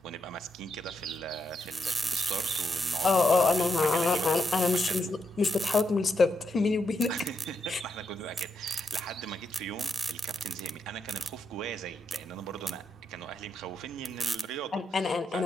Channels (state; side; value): normal; both; correlation 0.82